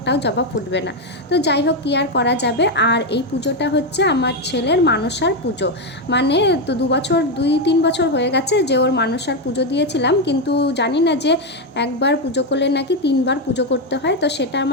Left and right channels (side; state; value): both; normal; correlation 0.06